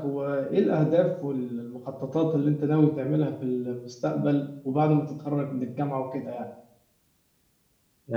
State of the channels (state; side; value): identical; both; correlation 1.00